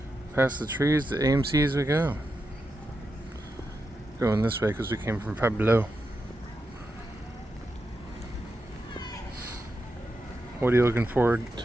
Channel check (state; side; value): normal; both; correlation 0.87